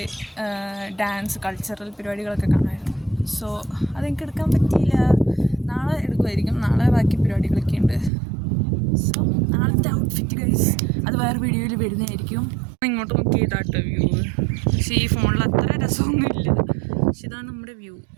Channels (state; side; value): drops out; left; at 8.1 s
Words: ഡാൻസ് കൾച്ചറൽ പരിപാടികളൊക്കെ കാണുമായിരുന്നു. സോ അതെനിക്ക് എടുക്കാൻ പറ്റിയില്ല. നാളെ എടുക്കുമായിരിക്കും. നാളെ ബാക്കി പരിപാടികളൊക്കെ ഉണ്ട്. സോ നാളത്തെ ഔട്ട്ഫിറ്റ് ഗൈസ് അത് വേറെ വീഡിയോയിൽ വരുന്നതായിരിക്കും. ഇങ്ങോട്ട് നോക്കി ചെയ്താട്ടോ വ്യൂ. പക്ഷേ ഈ ഫോണിൽ അത്ര രസമൊന്നുമില്ല. പക്ഷെ ഇതാണ് നമ്മുടെ വ്യൂ.